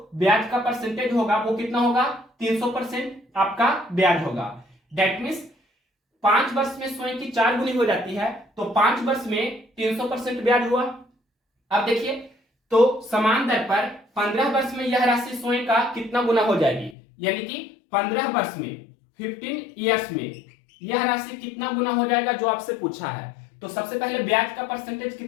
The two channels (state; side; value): drops out; right; at 16.9 s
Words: ब्याज का परसेंटेज होगा वो कितना होगा 300% आपका ब्याज होगा। दैट मीन्स 5 वर्ष में स्वयं की 4 गुनी हो जाती है तो 5 वर्ष में 300% ब्याज हुआ। अब देखिए तो समान दर पर 15 वर्ष में यह राशि स्वयं का कितना गुना हो जाएगी, यानी कि 15 वर्ष में 15 इयर्स में यह राशि कितना गुना हो जाएगा जो आपसे पूछा है। तो सबसे पहले ब्याज का परसेंटेज